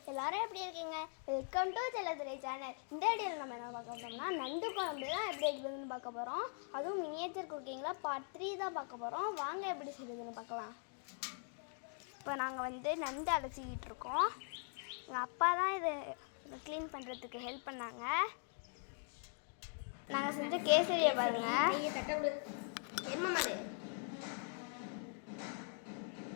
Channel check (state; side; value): silent; right; 50 dB below the other